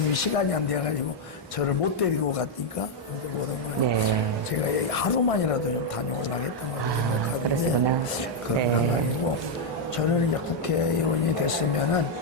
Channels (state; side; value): normal; both; correlation -0.01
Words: 시간이 안 돼가지고 저를 못 데리고 갔으니까 이제 못 온 거예요. 네. 제가 하루만이라도 좀 다녀오려고 했던 거거든요. 그러시구나. 그런 네. 상황이고 저는 이제 국회의원이 됐으면은